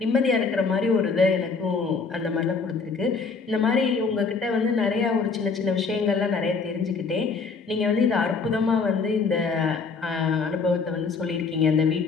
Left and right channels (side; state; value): right; quieter; 4.8 dB